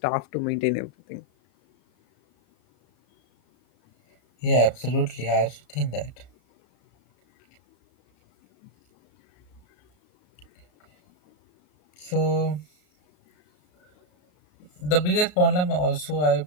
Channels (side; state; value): right; late; 33 ms